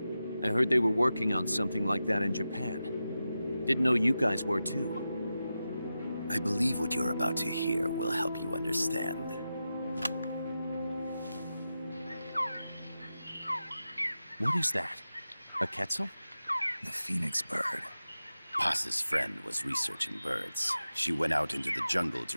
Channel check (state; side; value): inverted; both; correlation -0.92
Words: I heard they were working on something like that in Japan. Didn't know you guys were too. I believe what you're about to hear will help you understand. What is that? A quetzal? The phoenix bird. Paz's friend was researching birds. She went out into the jungle